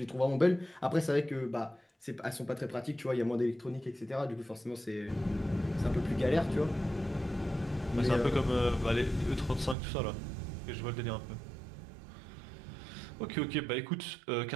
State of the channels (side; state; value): left; drops out; at 9.8 s